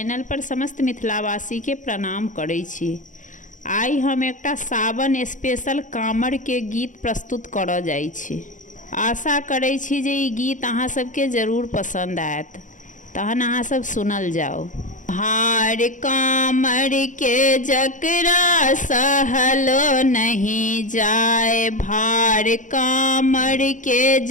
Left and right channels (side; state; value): right; late; 0.37 ms